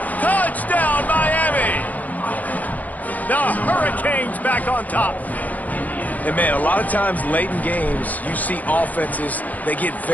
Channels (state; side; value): late; right; 0.078 ms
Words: Touchdown, Miami. The Hurricanes back on top. And, man, a lot of times late in games, you see offenses, they get